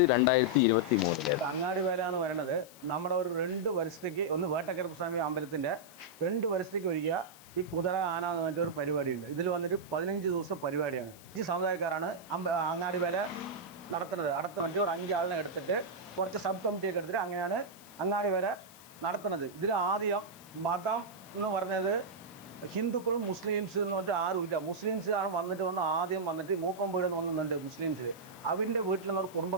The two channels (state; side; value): noise; left; hiss, 21 dB below the sound